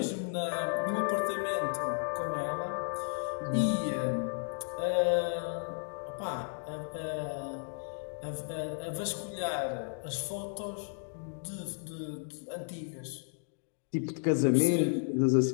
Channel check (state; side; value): silent; right; 55 dB below the other